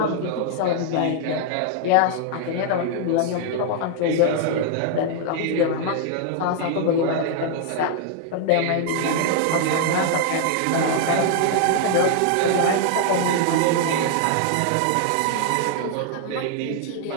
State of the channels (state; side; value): different; both; correlation 0.00